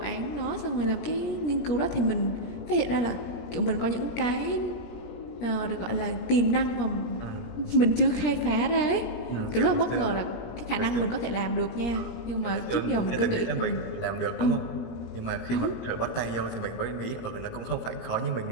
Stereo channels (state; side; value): late; right; 17 ms